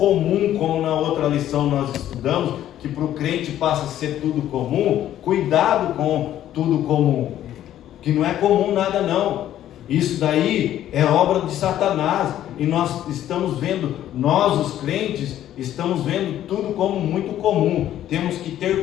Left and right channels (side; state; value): right; quieter; 12.0 dB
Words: como na outra lição nós estudamos, que para o crente passa a ser tudo comum, cuidado com tudo comum, que não é comum nada não. Isso daí é obra de Satanás, e nós estamos vendo, nós os crentes, estamos vendo tudo como muito comum. Temos que ter